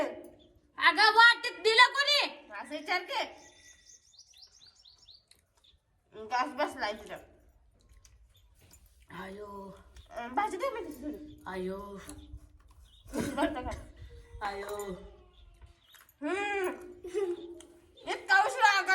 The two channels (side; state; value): both; identical; correlation 1.00